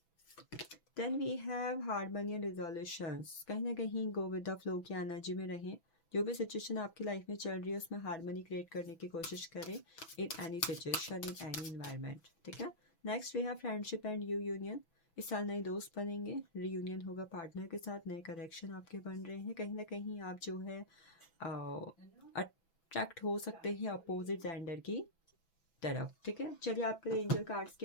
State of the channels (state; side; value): late; right; 6.0 ms